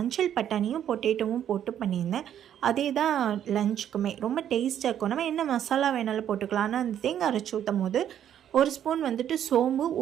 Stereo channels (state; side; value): quieter; left; 10.1 dB